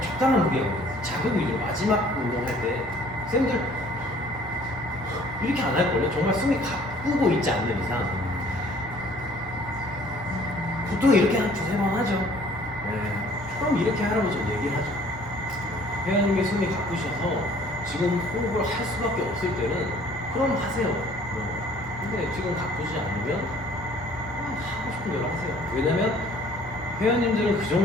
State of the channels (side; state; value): both; normal; correlation 0.55